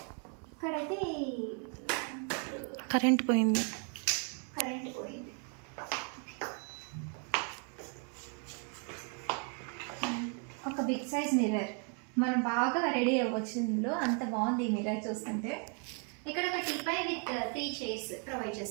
ఇక్కడైతే కరెంట్ పోయింది. ఒక బిగ్ సైజ్ మిర్రర్, మనం బాగా రెడీ అవ్వచ్చు ఇందులో, అంత బాగుంది ఈ మిర్రర్ చూస్తుంటే. ఇక్కడ ఒక టీపై విత్ 3 చైర్స్ ప్రొవైడ్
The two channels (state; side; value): quieter; left; 39.8 dB